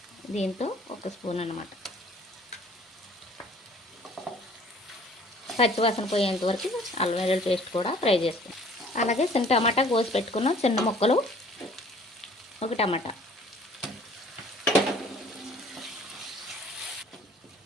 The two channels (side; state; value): both; normal; correlation 0.53